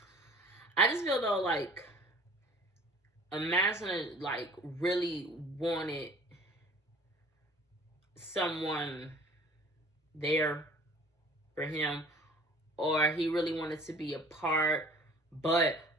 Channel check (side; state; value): both; normal; correlation 0.48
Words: I just feel though, like, imagine, like, really wanted someone there for him, or he really wanted to be apart. But